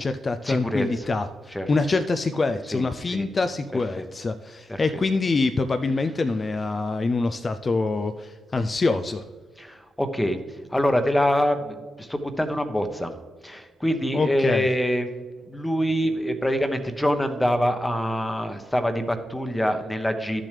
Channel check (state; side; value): normal; both; correlation 0.91